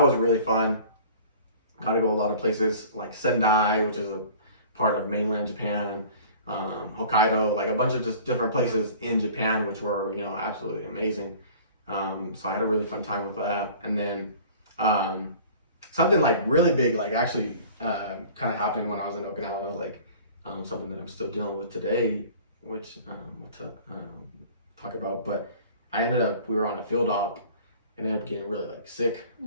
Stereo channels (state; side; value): inverted; both; correlation -0.46